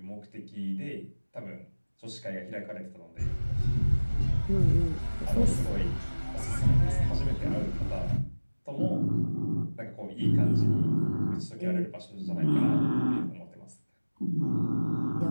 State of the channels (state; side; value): inverted; both; correlation -1.00